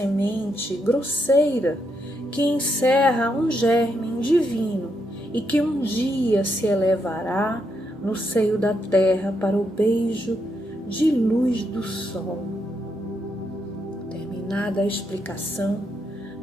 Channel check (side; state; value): both; normal; correlation 0.79